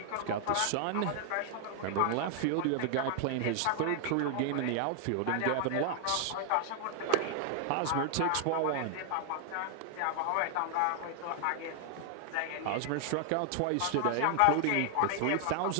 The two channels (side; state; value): both; different; correlation 0.00